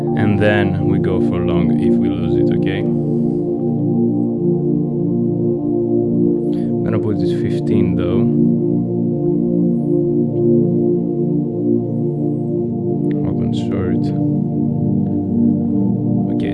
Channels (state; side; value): identical; both; correlation 1.00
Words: and then we go for long if we lose it. Okay. I'm gonna put this 15 though. Open short. Okay,